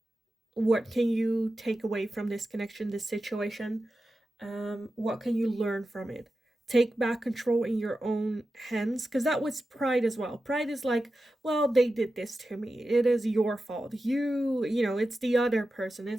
What can you take away from this connection, this situation? What can you learn from it? Take back control in your own hands, because that was pride as well. Pride is like, well, they did this to me. It is your fault. It's the other person.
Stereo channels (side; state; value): both; normal; correlation 0.92